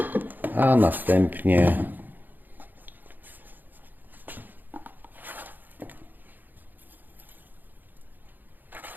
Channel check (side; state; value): left; late; 0.088 ms